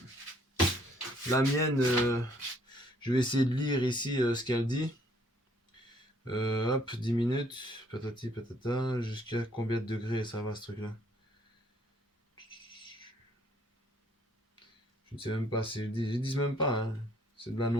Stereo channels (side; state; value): both; normal; correlation 0.64